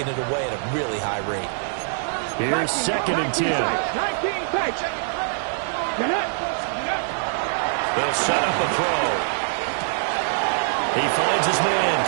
it away at a really high rate. Here's 2nd and 10. They'll set up a throw. He finds his man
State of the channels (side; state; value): left; silent; digital silence